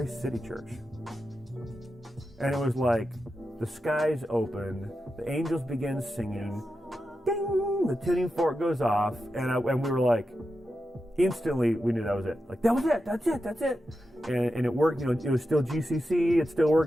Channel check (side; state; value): both; normal; correlation 0.89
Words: City Church? And it was like the skies open, the angels begin singing, ding, the tuning fork goes off, and we were like, instantly we knew that was it. Like, that was it, that's it. And it worked, it was still GCC, it still